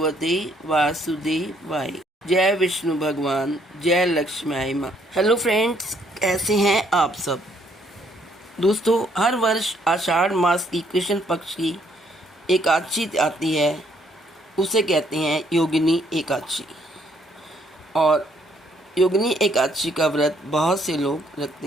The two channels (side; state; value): both; normal; correlation 0.68